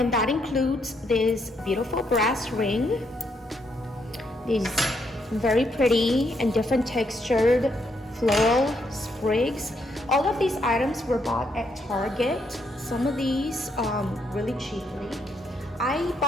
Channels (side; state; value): both; normal; correlation 0.75